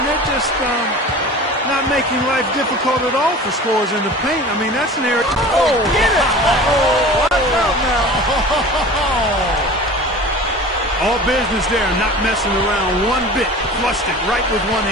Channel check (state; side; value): normal; both; correlation 0.39